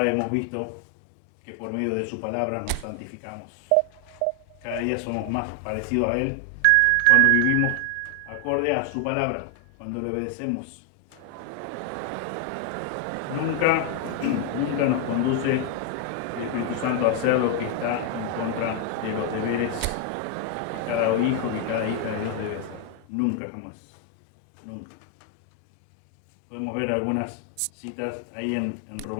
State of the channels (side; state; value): both; different; correlation 0.00